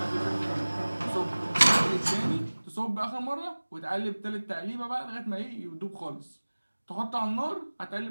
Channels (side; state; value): both; inverted; correlation -1.00